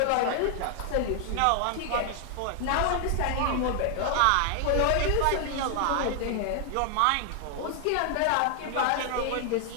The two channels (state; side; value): different; both; correlation 0.00